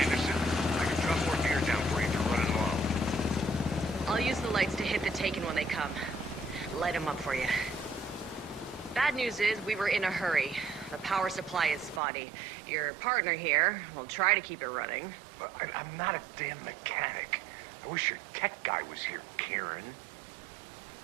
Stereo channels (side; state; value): left; drops out; at 12.0 s